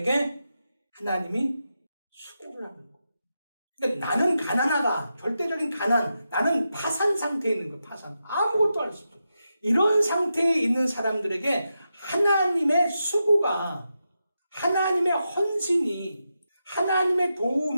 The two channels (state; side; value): inverted; both; correlation -0.88